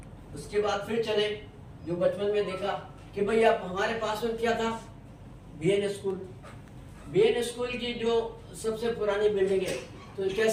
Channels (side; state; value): both; identical; correlation 1.00